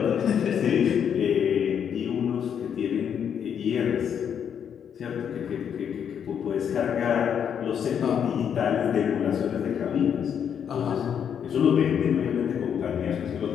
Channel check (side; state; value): right; quieter; 8.2 dB